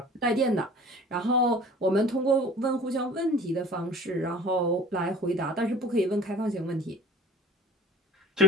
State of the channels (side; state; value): both; normal; correlation 0.45